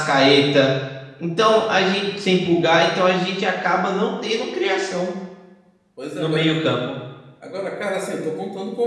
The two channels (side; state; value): both; identical; correlation 1.00